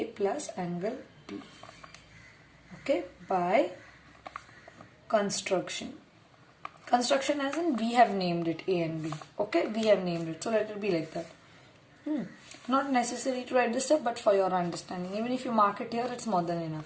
plus angle B. Okay, by construction. Construction as in we have named it A and B. Okay, we have named it. So let it be like that. Not necessary to write this stuff, but for your understanding. Even if you mark it here, it's more than enough.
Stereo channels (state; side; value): identical; both; correlation 1.00